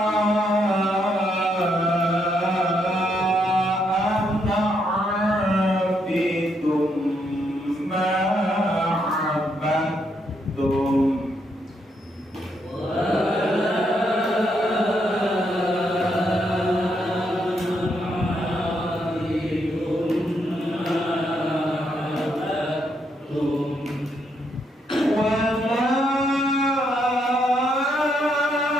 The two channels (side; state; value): both; normal; correlation 0.77